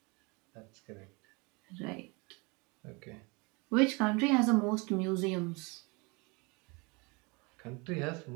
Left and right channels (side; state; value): left; quieter; 28.7 dB